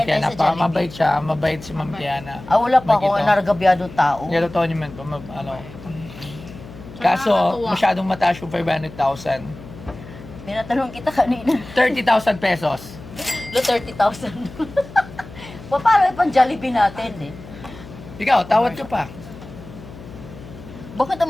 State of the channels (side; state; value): left; noise; hum, 16 dB below the sound